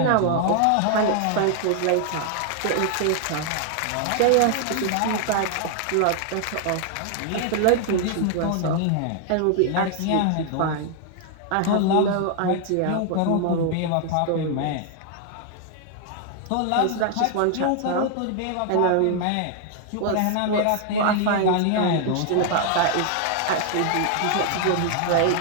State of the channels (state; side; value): different; both; correlation 0.00